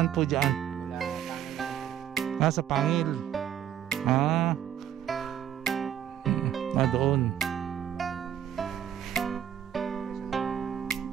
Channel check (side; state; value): left; quieter; 10.1 dB